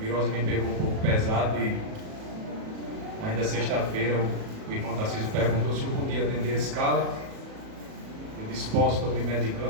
me pegou um pouco pesado e ainda sexta-feira o irmão Tarcísio perguntou se eu podia atender a escala. Eu disse, posso, estou me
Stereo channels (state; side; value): late; left; 37 ms